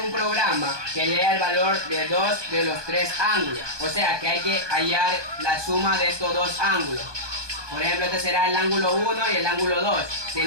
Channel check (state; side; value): late; left; 1.2 ms